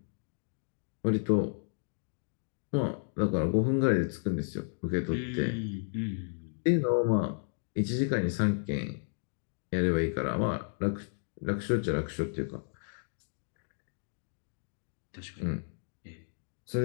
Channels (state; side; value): silent; right; digital silence